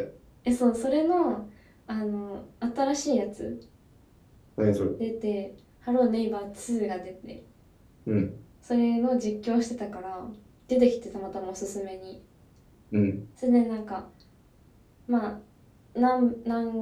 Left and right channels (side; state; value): both; identical; correlation 1.00